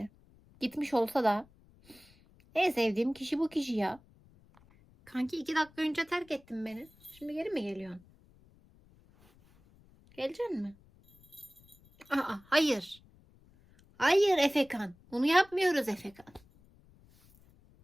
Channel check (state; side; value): noise; left; rumble, 28 dB below the sound